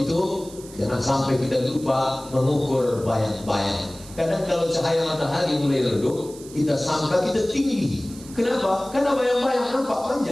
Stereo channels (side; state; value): right; noise; hiss, 19 dB below the sound